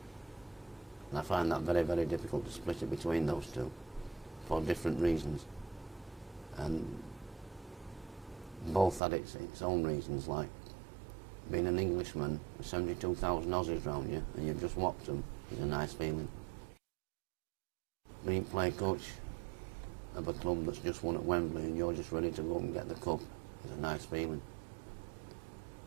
And I find that very, very difficult to split it between those two for different reasons. And both had its own reasons, like being an Englishman with 72,000 Aussies around you and you've just whopped them is a nice feeling. Being play coach of a club that's just won at Wembley and you're just ready to go and get the cup is a nice feeling.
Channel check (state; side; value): drops out; left; at 9.0 s